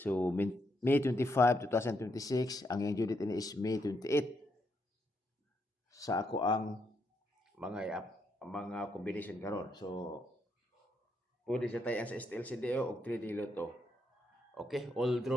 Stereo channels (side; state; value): both; normal; correlation 0.78